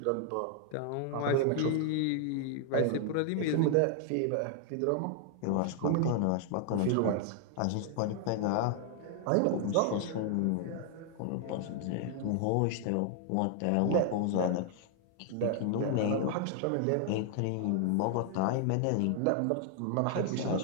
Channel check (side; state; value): both; different; correlation 0.00